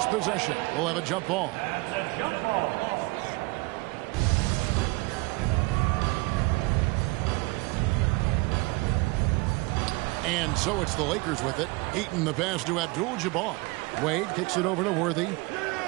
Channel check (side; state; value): left; quieter; 24.8 dB